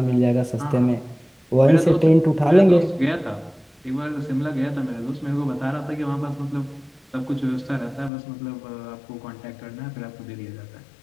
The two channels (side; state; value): right; drops out; at 8.1 s